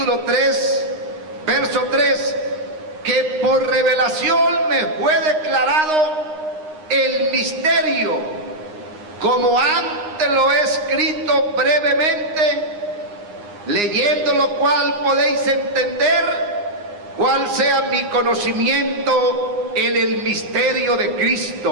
3, verso 3, que por revelación me fue declarado el misterio, como antes lo he escrito brevemente, leyendo lo cual podéis entender cuál sea mi conocimiento en el misterio de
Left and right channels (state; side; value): late; left; 9.7 ms